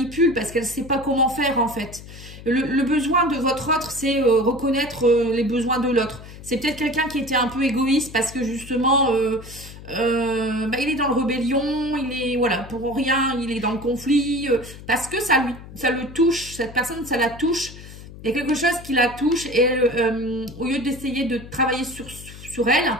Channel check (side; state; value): left; noise; hum, 16 dB below the sound